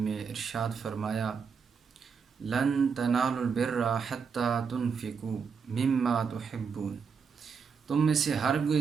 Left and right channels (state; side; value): quieter; left; 6.0 dB